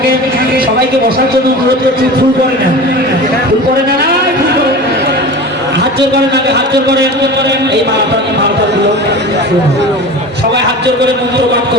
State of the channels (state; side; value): normal; both; correlation 0.34